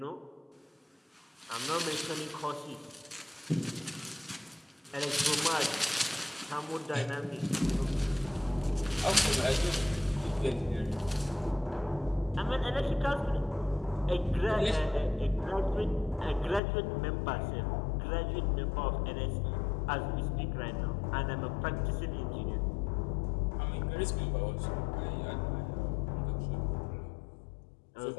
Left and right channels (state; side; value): drops out; right; at 16.6 s